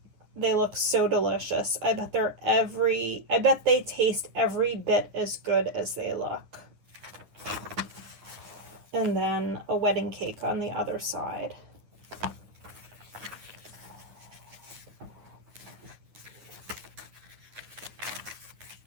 They look so delicious. I bet they taste every bit as good as they look. And then a wedding cake on the other side.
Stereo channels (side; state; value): left; late; 9.6 ms